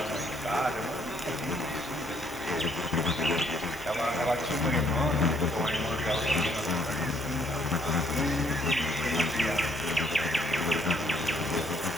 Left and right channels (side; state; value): both; normal; correlation 0.66